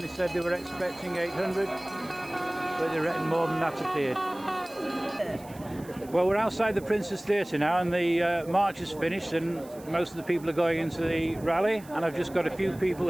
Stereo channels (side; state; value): right; noise; hiss, 22 dB below the sound